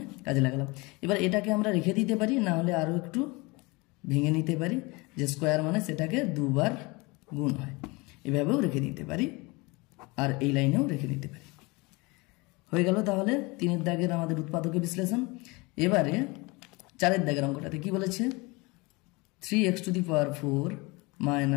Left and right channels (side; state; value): right; quieter; 25.5 dB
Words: কাজে লাগালাম। এবার এটাকে আমরা রেখে দিতে পারি, না হলে আরো একটু ভেঙে নিতে পারি, যে স্কয়ার মানে সেটাকে দুবার গুণ হয়, এভাবেও রেখে দিতে পারি আর এই লাইনেও রেখে দিতে পারি। হয়ে গেল তাহলে 3 দাগের আমাদের উৎপাদকে বিশ্লেষণ। এবারে 4 দাগের অঙ্কটাতে কি বলেছে, 3x⁴